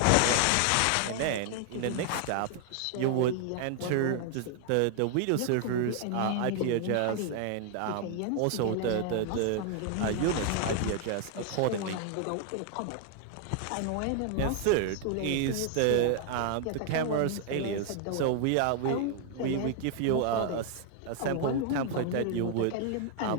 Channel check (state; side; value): different; both; correlation 0.00